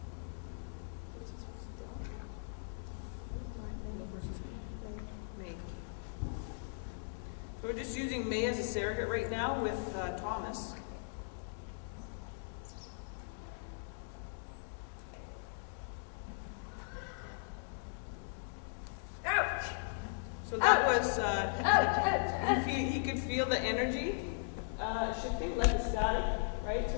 So we're just using May as a surrogate right now with Thomas. So that was, he could feel the energy shifting like a static, right?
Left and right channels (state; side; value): silent; right; digital silence